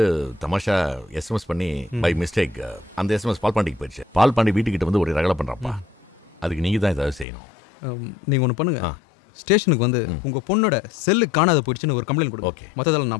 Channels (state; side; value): drops out; right; at 7.2 s